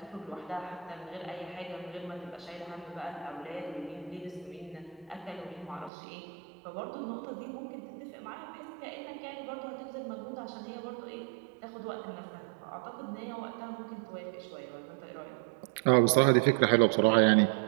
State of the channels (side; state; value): left; drops out; at 5.9 s